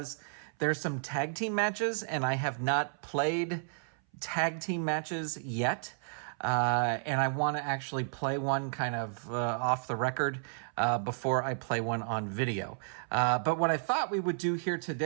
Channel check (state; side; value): silent; left; 56 dB below the other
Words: there's some tag team matches, and I have not played tag team matches yet. And I want to actually play one kind of off the record before I play one on video. But what I thought we would do here